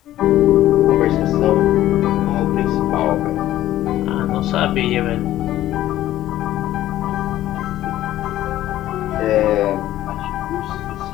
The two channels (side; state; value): right; quieter; 13.8 dB